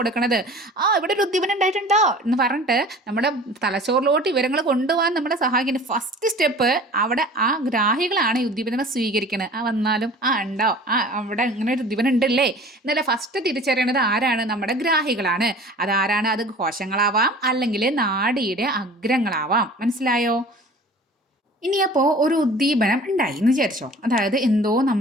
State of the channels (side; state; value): both; normal; correlation 0.44